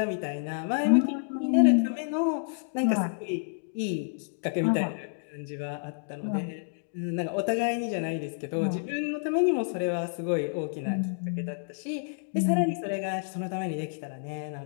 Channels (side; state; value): right; silent; digital silence